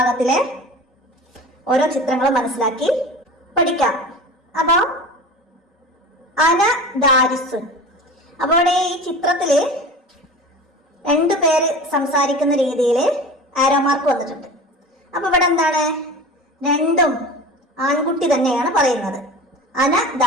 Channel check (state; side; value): normal; both; correlation 0.35